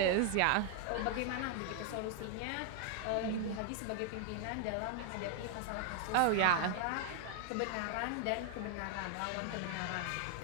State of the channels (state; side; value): different; both; correlation 0.00